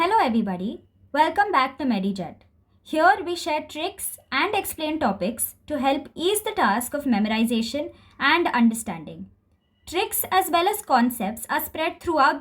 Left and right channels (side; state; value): both; identical; correlation 1.00